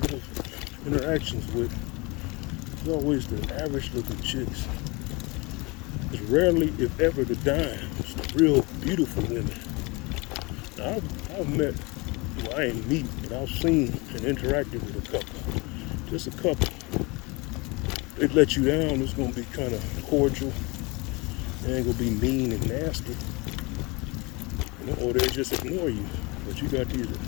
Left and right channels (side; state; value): right; quieter; 26.1 dB